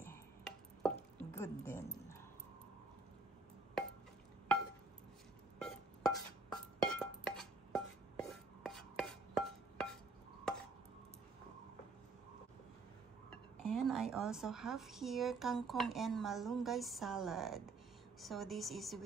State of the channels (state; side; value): quieter; left; 3.6 dB